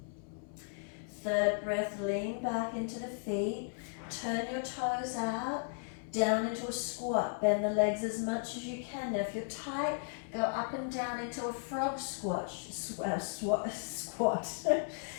Third breath, lean back into the feet. Turn your toes out, down into a squat. Bend the legs as much as you can. Now if you're tight, go up and down into a frog squat.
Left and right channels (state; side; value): silent; right; 54 dB below the other